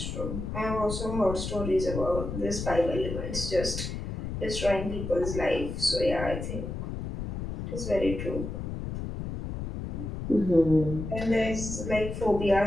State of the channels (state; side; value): noise; left; rumble, 5 dB below the sound